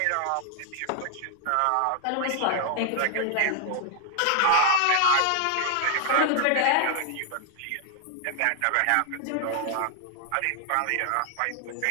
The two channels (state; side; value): different; both; correlation 0.00